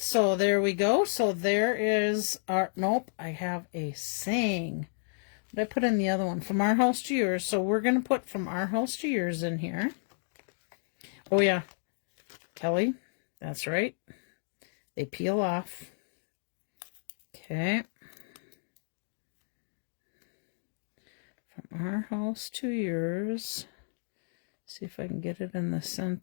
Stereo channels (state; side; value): silent; right; digital silence